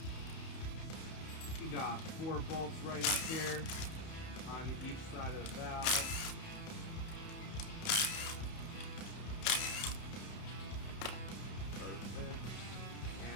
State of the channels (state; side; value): late; right; 31 ms